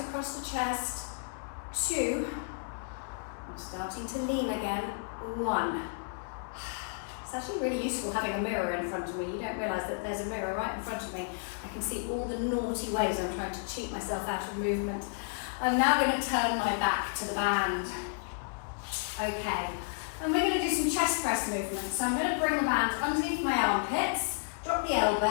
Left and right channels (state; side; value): silent; right; 56 dB below the other